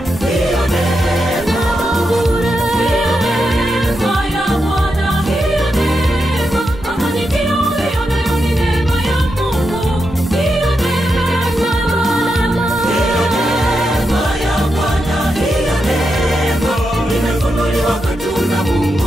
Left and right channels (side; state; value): both; normal; correlation 0.86